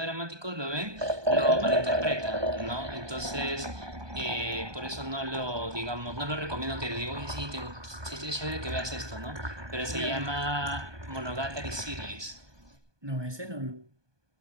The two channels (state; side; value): late; left; 1.2 ms